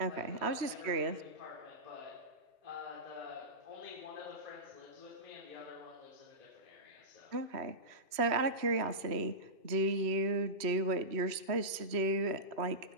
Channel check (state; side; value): late; left; 3.0 ms